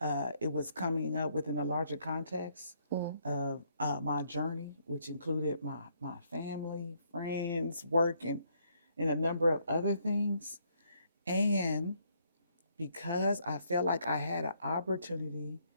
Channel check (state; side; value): inverted; both; correlation -0.71